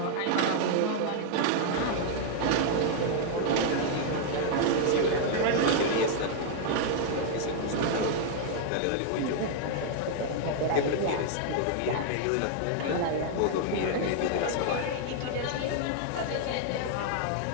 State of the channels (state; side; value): different; both; correlation 0.00